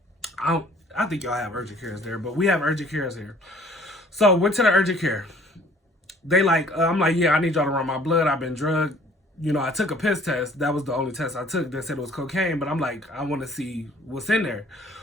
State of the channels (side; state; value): both; normal; correlation 0.55